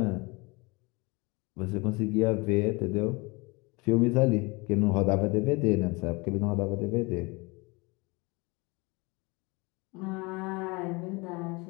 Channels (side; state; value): right; quieter; 26.5 dB